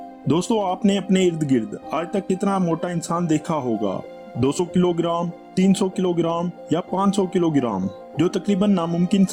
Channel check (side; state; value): both; identical; correlation 1.00